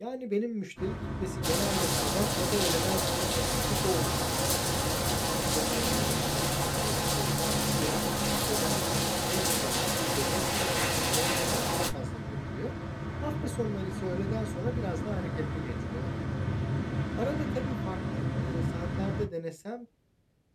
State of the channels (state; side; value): identical; both; correlation 1.00